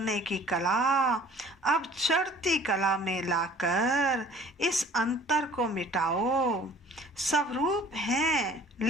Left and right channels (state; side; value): normal; both; correlation 0.50